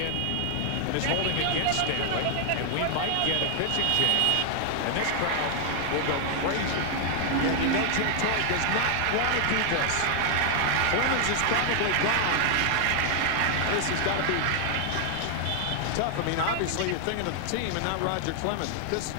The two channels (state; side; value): different; both; correlation 0.00